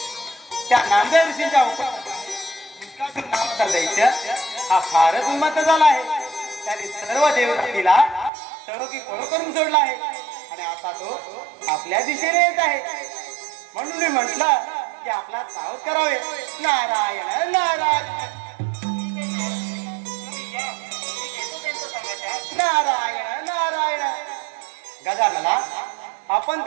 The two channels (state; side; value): drops out; left; at 8.3 s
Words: त्या नामदेव ऋषींच्या दैत्य हा फारच उन्मत्त झाला आहे. त्याने सर्व देवतेला तडोकी पळो करून सोडला आहे आणि आता तो आपल्या दिशेने येत आहे. म्हणून मी म्हटलं की आपला सावध करावे. नारायण नारायण नारायण नारायण. गजानना आपण